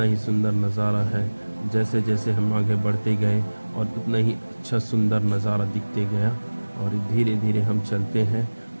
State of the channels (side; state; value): both; inverted; correlation -1.00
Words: ही सुंदर नज़ारा है। जैसे जैसे हम आगे बढ़ते गए और उतना ही अच्छा सुंदर नज़ारा दिखते गया और धीरे धीरे हम चलते हैं